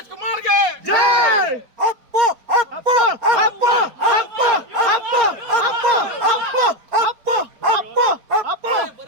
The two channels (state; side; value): late; left; 4.6 ms